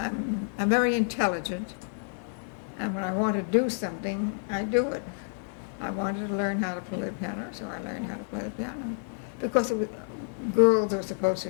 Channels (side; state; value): right; silent; 59 dB below the other